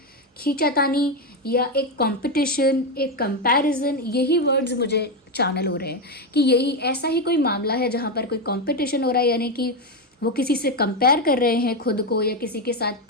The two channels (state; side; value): normal; both; correlation 0.09